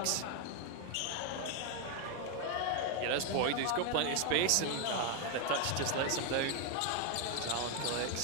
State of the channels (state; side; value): different; both; correlation 0.01